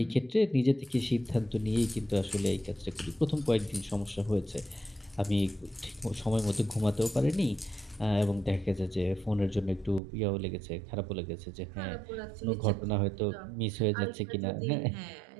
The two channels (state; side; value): drops out; left; at 10.0 s